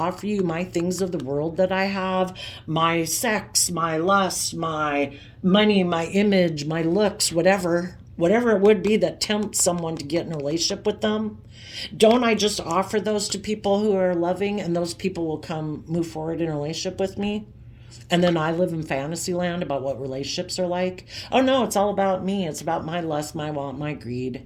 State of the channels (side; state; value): both; identical; correlation 1.00